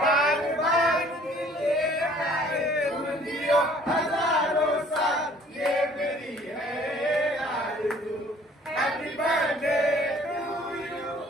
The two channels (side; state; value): both; normal; correlation 0.55